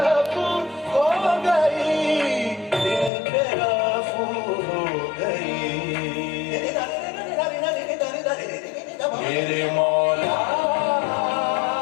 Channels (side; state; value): right; drops out; at 3.1 s